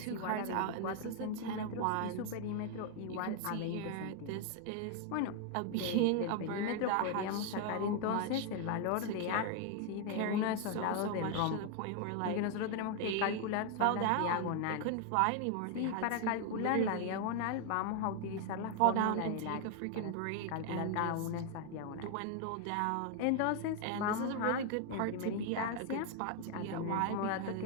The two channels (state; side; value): different; both; correlation 0.01